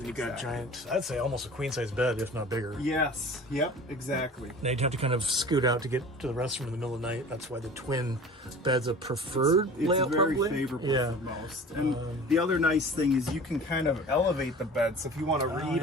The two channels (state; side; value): normal; both; correlation 0.41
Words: you got giant, I'd say almost a queen size bed, if not bigger. Yes, yep, exactly. Now you'd have to kind of scoot out to get to the restroom in the middle of the night. That's why the twin bed's a preferred layout, it's very probably. favorable for most. And the other nice thing is you can kind of elevate the bed. So if you want to